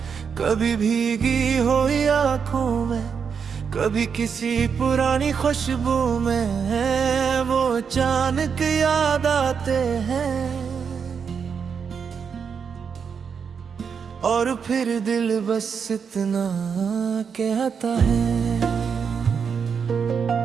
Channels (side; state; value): left; quieter; 6.4 dB